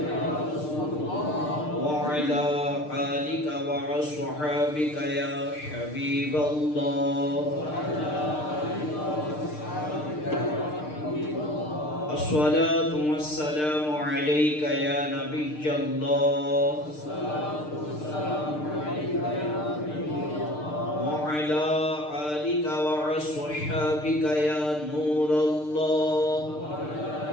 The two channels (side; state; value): right; late; 6.6 ms